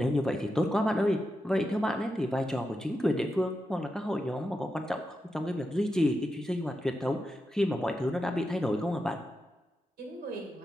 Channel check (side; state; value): both; normal; correlation 0.88